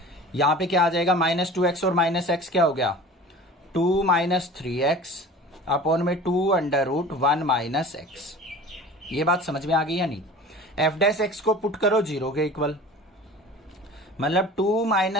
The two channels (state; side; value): normal; both; correlation 0.40